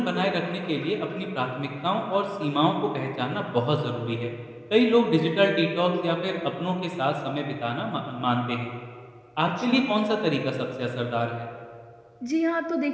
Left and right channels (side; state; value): both; identical; correlation 1.00